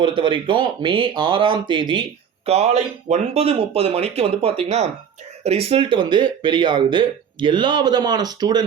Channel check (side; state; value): left; quieter; 7.7 dB